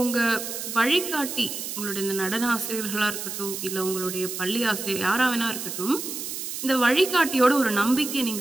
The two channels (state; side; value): noise; right; hiss, 6 dB below the sound